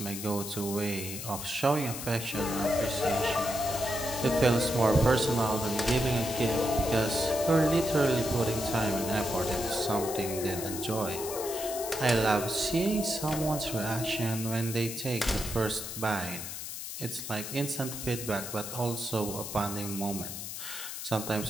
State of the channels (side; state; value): left; noise; hiss, 7 dB below the sound